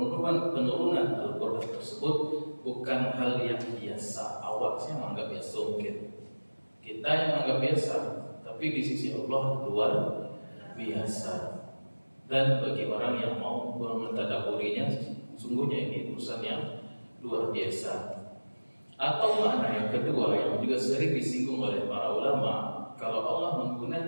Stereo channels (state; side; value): inverted; both; correlation -1.00